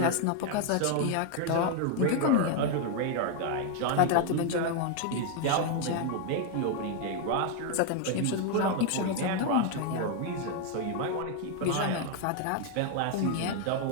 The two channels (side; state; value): both; different; correlation 0.01